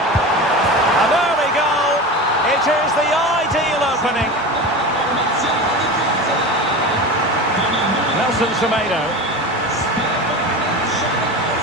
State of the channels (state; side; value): normal; both; correlation 0.28